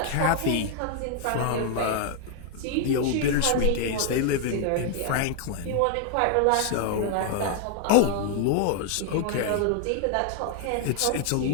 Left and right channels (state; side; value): different; both; correlation 0.00